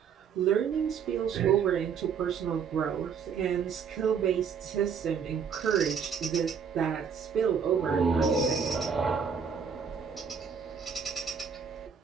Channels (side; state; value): left; quieter; 6.8 dB